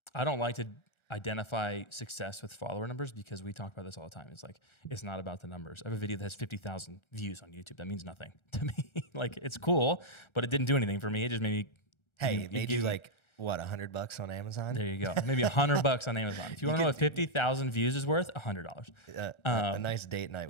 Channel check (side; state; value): right; late; 1.4 ms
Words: I don't like to identify success with follower numbers because we talk about this all the time. It's like it's not about the numbers. I have a video that has 50,000 views on YouTube. That means nothing to me. Like it's cool, but it didn't do anything for me. It just made me. Hey, it made you like what, $100 on Amazon? There you go. Maybe $100 on Amazon. If you want to know what 50,000 views is worth, $100. A nice date